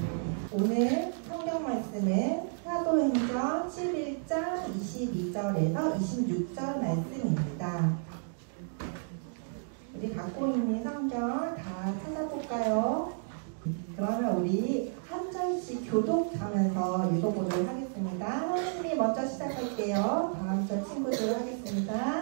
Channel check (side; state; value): left; silent; digital silence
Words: 오늘 성경 말씀은 사도행전 11장 22절에서 26절 말씀입니다. 우리 갖고 있는 성경 다 찾아볼까요? 그러면 우리 한 절씩 교독하면서 읽어보도록 하겠습니다. 하나님이 먼저 시작할게요. 다음 절 친구들